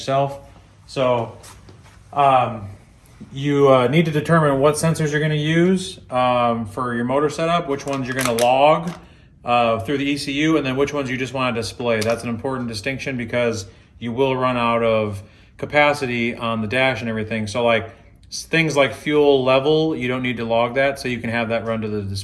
So you need to determine what sensors you're going to use for your motor setup, which ones you're going to log through the ECU, and then which ones you just want to display. That's an important distinction because you will run out of capacity on the dash and everything. So like things like fuel level, you don't need to log that, so you can have that run to the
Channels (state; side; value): identical; both; correlation 1.00